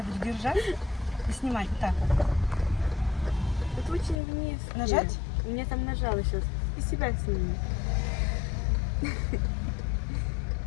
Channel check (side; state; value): right; drops out; at 4.2 s